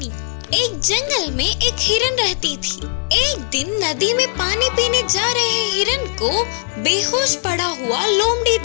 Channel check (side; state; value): right; silent; 57 dB below the other